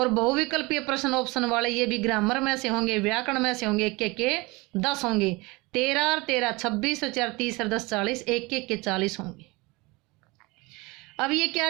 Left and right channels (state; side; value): quieter; left; 24.3 dB